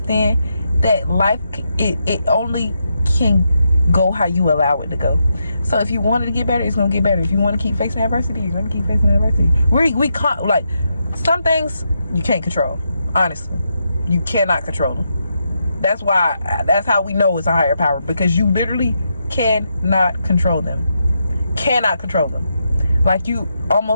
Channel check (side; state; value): both; inverted; correlation -0.82